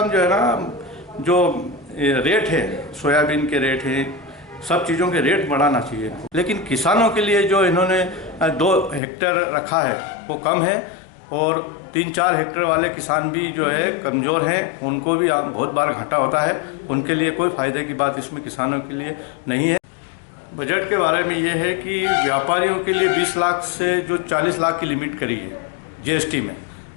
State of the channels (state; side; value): drops out; right; at 9.0 s